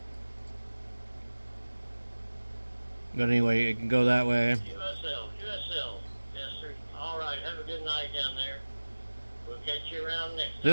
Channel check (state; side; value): inverted; both; correlation -1.00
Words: But anyway, it can go that way. USL. Yes, sir. All right. Have a good night down there. We'll catch you around next time.